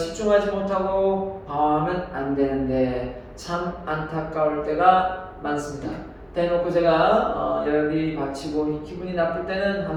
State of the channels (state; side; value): identical; both; correlation 1.00